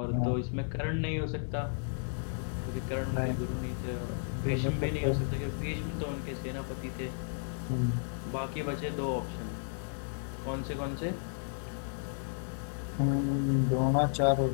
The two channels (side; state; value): right; silent; 56 dB below the other